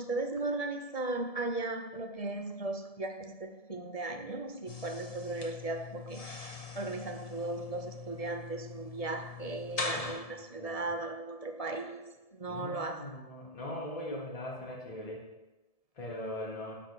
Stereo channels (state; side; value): late; right; 1.7 ms